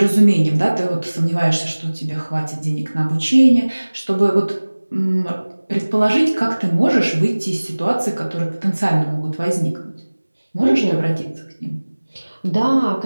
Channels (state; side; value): inverted; both; correlation -1.00